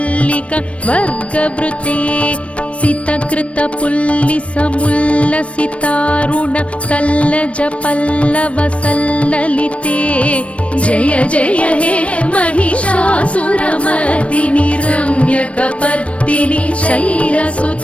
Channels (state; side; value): late; right; 0.062 ms